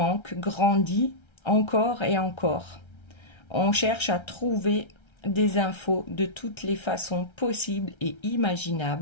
grandit encore et encore. On cherche à trouver des infos de toutes les façons possibles et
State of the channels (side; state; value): right; late; 1.3 ms